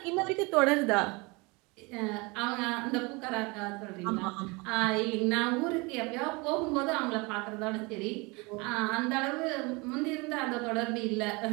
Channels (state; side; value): quieter; left; 26.9 dB